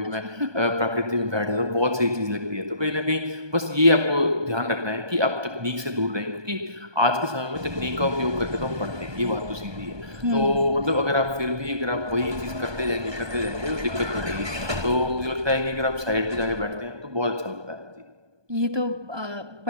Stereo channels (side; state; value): left; late; 1.2 ms